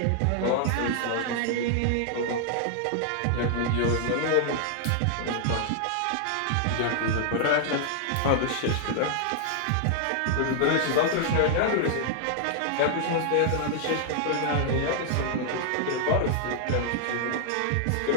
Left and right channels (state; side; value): different; both; correlation 0.00